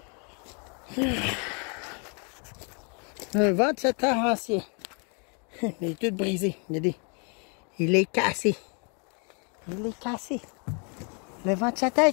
Un ventilateur ancien. Il est tout brisé. Regardez. Il est cassé. Il est cassé. Le ventilateur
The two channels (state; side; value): quieter; right; 36.4 dB